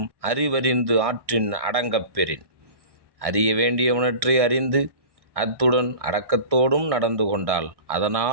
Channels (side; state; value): left; late; 1.6 ms